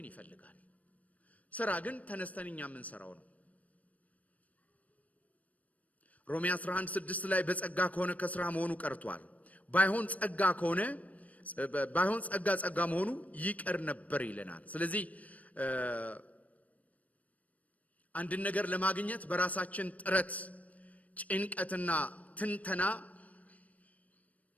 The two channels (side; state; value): right; late; 0.070 ms